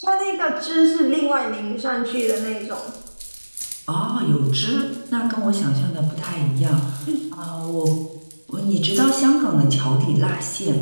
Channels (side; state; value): both; inverted; correlation -1.00